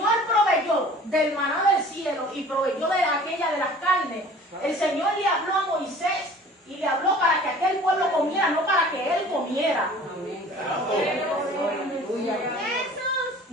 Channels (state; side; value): normal; both; correlation 0.47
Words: proveyó del maná del cielo y proveyó de aquella de las carnes, el Señor le habló a Moisés y le habló para que aquel pueblo comiera, no para que él comiera.